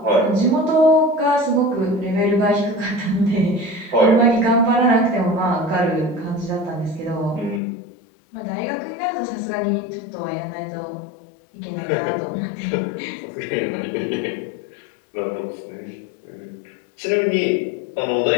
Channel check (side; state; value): right; drops out; at 7.6 s